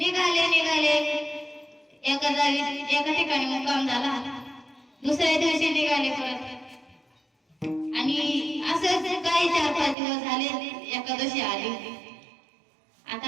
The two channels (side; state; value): left; drops out; at 10.0 s